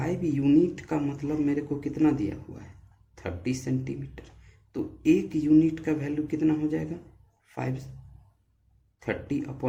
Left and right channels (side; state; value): both; identical; correlation 1.00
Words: यूनिट का मतलब मेरे को कितना दिया हुआ है 30 सेंटीमीटर, तो 1 यूनिट का वैल्यू कितना हो जाएगा